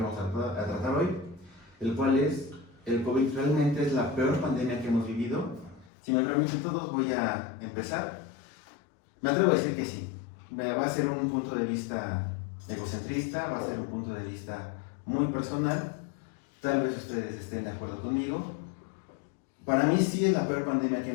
vamos a tratar hoy, el cual es: ¿el COVID realmente es la peor pandemia que hemos vivido? Si me permiten todos, voy a empezar. Me atrevo a decir que sí. Va a ser un punto de vista egocentrista, va a ser un punto de vista muy personal. Tal vez ustedes estén de acuerdo conmigo. Para mí sí es la peor pandemia que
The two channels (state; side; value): drops out; right; at 5.9 s